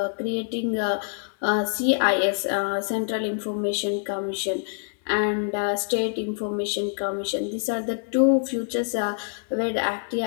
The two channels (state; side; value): silent; right; digital silence